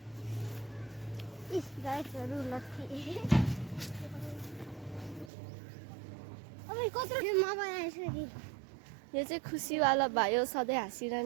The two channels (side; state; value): left; drops out; at 5.3 s